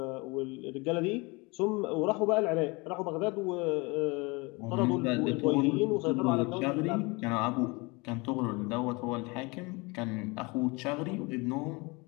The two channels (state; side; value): quieter; right; 26.8 dB